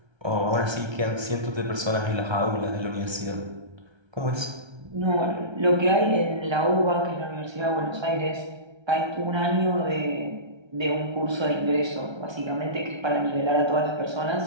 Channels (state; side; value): late; left; 1.3 ms